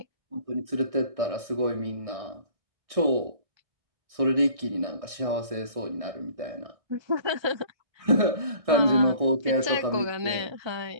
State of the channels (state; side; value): late; left; 1.6 ms